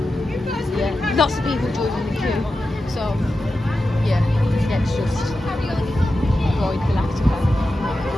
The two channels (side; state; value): both; normal; correlation 0.91